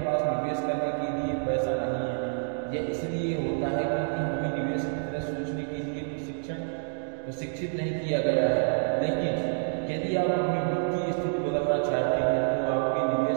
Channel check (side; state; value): left; silent; digital silence